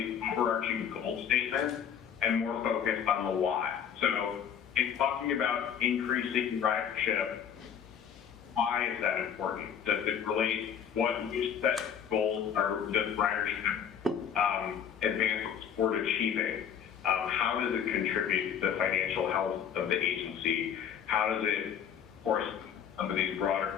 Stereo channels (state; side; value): quieter; right; 8.3 dB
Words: overarching goal statements and more focused on the why. So in talking about increasing ridership, why is that important? Does it relate what new set goals or does ridership advance toward achieving? How does it contribute to the financial health of the agency? How does it, of course, some of these